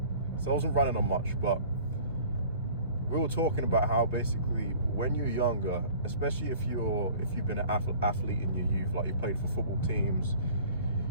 So I wasn't running on much, but we were talking about how basically when you're younger, especially if you've been an athlete in your youth, like you played for football teams,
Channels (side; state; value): both; inverted; correlation -0.47